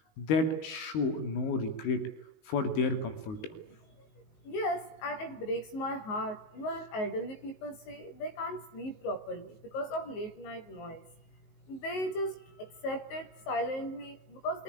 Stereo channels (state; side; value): late; right; 19 ms